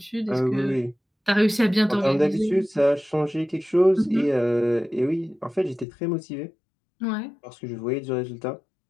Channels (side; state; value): right; drops out; at 5.9 s